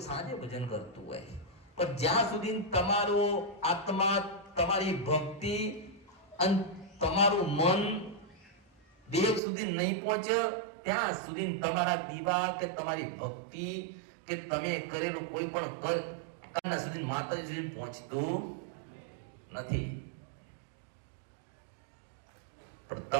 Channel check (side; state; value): left; drops out; at 9.4 s